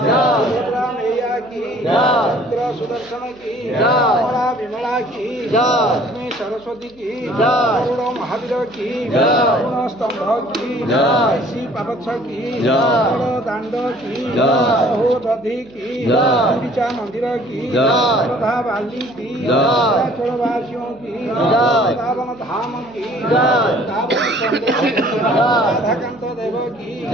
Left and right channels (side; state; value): right; noise; hum, 27 dB below the sound